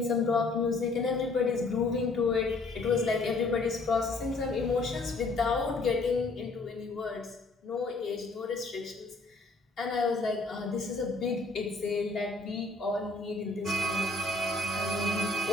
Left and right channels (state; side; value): quieter; right; 3.3 dB